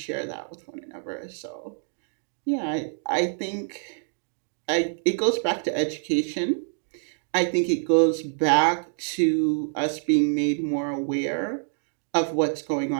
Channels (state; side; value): silent; left; digital silence